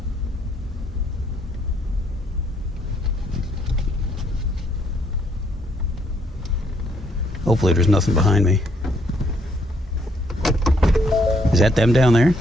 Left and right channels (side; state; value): both; normal; correlation 0.70